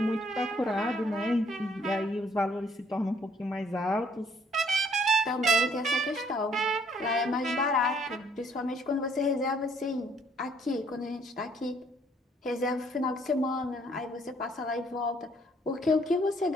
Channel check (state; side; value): normal; both; correlation 0.64